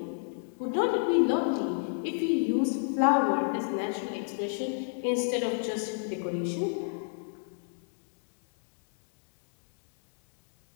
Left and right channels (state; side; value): silent; right; digital silence